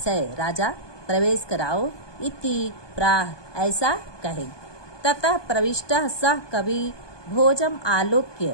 राजा प्रवेश कराओ। इति प्राह, ऐसा कहे। ततः प्रविष्टः सह कवि भोजम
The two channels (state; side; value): late; right; 1.2 ms